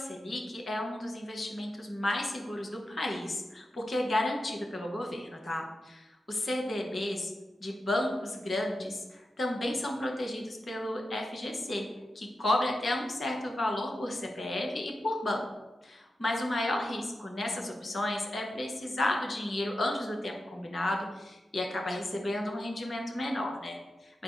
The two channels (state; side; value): normal; both; correlation 0.90